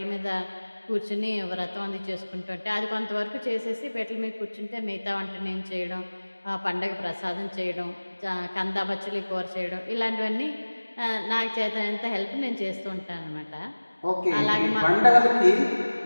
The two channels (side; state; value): both; inverted; correlation -1.00